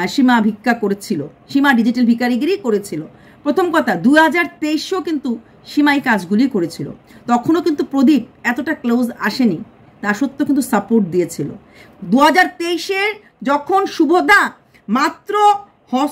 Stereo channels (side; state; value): both; identical; correlation 1.00